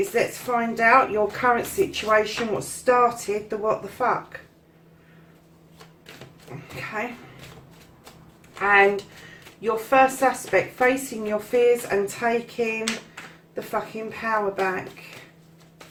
let's find out your current situation, what started the what the fuck. Okay. And your first aspect, facing your fears and taking the fucking power back.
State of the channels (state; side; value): identical; both; correlation 1.00